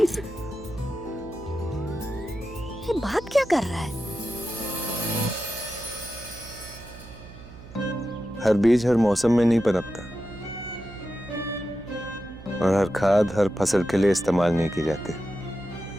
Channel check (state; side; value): noise; right; hum, 17 dB below the sound